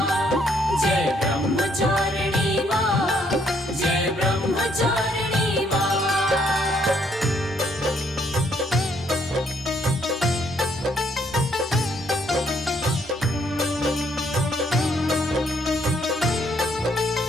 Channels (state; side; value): normal; both; correlation 0.69